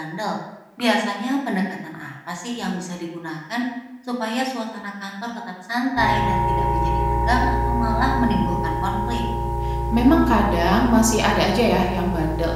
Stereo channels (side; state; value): both; identical; correlation 1.00